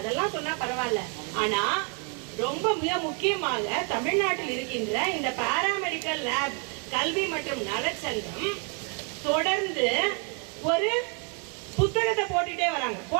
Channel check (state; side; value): quieter; left; 37.5 dB